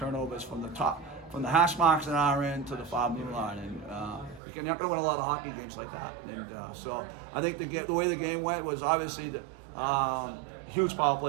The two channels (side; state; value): left; drops out; at 4.4 s